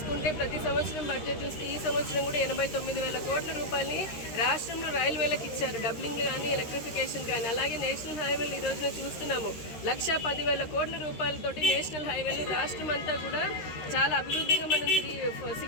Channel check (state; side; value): late; right; 13 ms